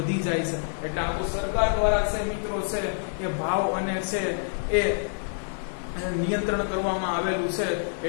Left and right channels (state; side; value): silent; right; digital silence